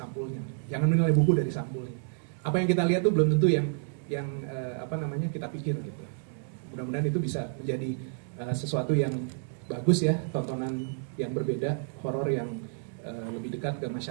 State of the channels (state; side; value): silent; left; digital silence